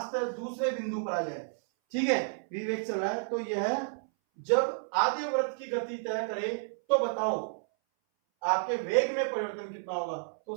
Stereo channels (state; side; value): silent; left; 57 dB below the other